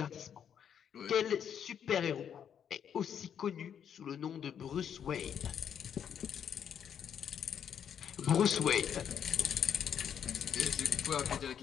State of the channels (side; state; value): right; quieter; 8.5 dB